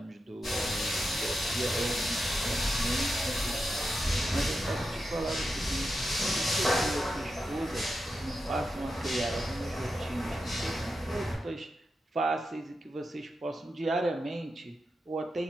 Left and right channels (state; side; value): normal; both; correlation 0.88